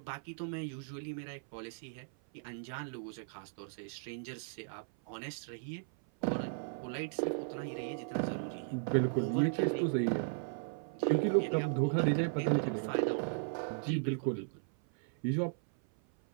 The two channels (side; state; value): left; silent; 54 dB below the other